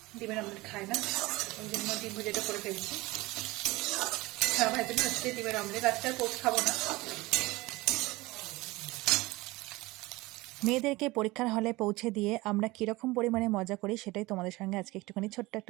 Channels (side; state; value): left; quieter; 21.1 dB